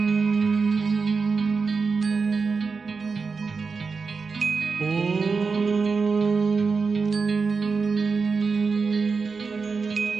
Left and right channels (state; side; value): quieter; left; 4.8 dB